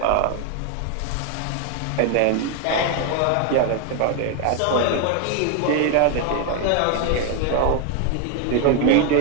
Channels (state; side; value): different; both; correlation 0.01